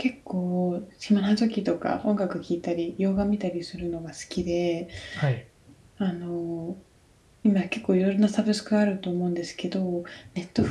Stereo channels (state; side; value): identical; both; correlation 1.00